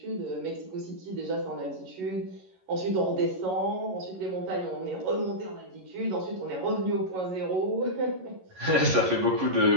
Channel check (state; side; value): late; left; 11 ms